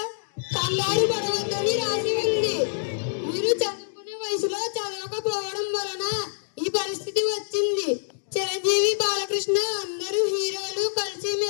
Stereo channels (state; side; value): silent; right; digital silence